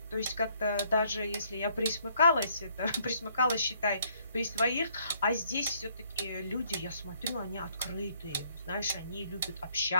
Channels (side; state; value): both; inverted; correlation -0.67